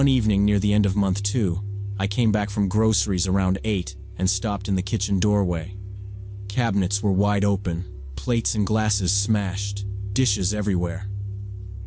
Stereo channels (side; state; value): both; identical; correlation 1.00